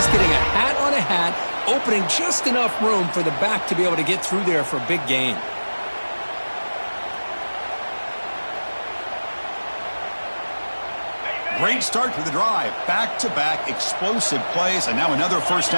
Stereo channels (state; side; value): inverted; both; correlation -1.00